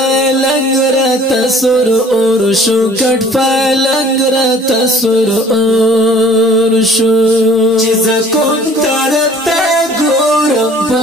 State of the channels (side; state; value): both; normal; correlation 0.52